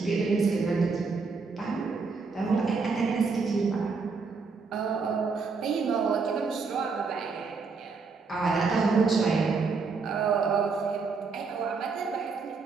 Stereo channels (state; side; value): quieter; left; 4.6 dB